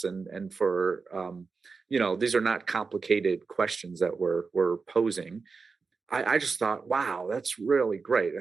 and for these are not complicated questions that we're posing. I just thought, wow, that's really great,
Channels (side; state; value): left; quieter; 4.7 dB